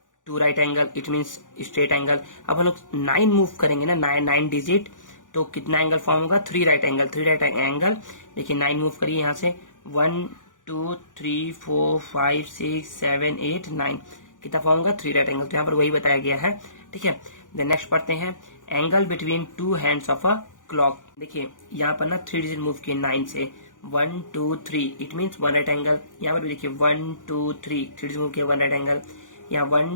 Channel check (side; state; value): right; late; 0.88 ms